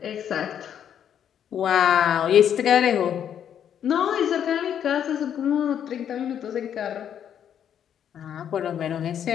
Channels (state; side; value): quieter; right; 9.2 dB